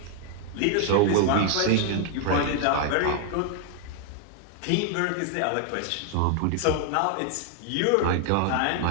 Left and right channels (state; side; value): different; both; correlation 0.00